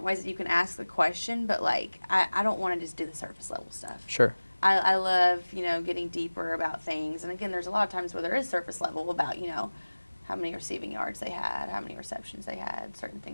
ways that you can ask the question, but like I don't want to just do the surface level stuff. Sure. I love, getting deeper about things. And again, there's a lot of times where there is surface level about, how many receiving yards they had, how many receptions they had, certain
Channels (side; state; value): both; inverted; correlation -1.00